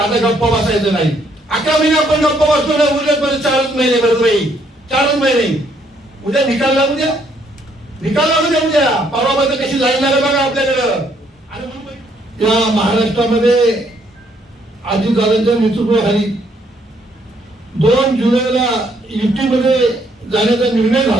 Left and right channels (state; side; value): normal; both; correlation 0.69